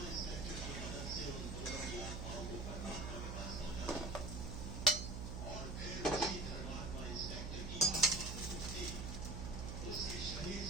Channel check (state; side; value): noise; right; hum, 5 dB below the sound